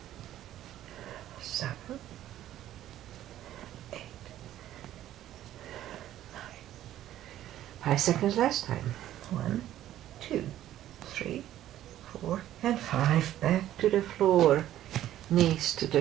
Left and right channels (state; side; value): quieter; left; 12.7 dB